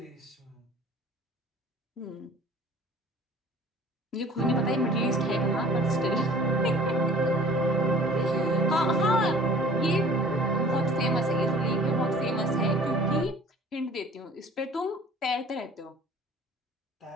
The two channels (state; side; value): normal; both; correlation 0.48